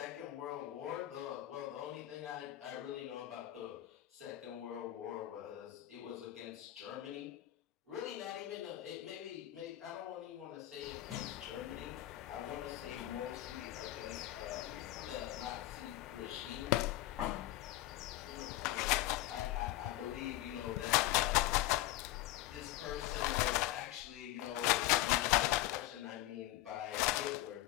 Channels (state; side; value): quieter; right; 15.5 dB